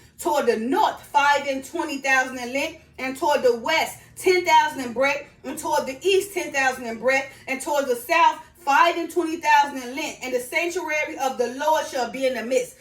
Toward the north, 5 and 20,000 in length, and toward the west, 10,000 in breadth, and toward the east, 10,000 in breadth, and toward the south, 5 and 20,000 in length. And the sanctuary of the Lord shall be in the midst.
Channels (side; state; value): both; identical; correlation 1.00